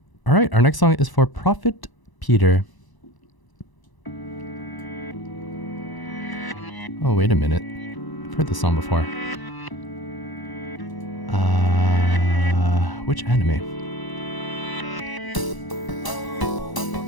All right, our next song is for Prophet Peter. Oh, wait a minute. I've heard this song before. Which anime?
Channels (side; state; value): right; late; 1.0 ms